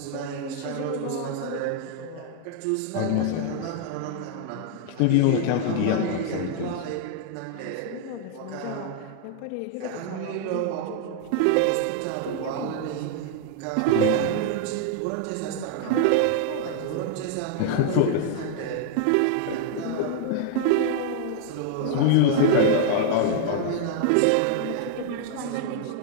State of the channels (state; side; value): different; both; correlation -0.01